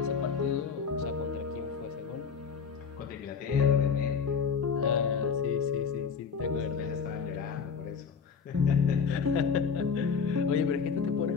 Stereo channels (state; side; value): quieter; right; 5.9 dB